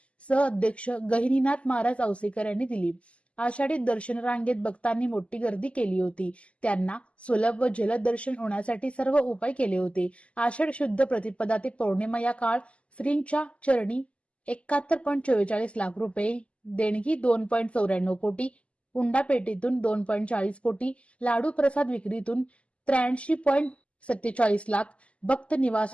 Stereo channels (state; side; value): late; right; 0.060 ms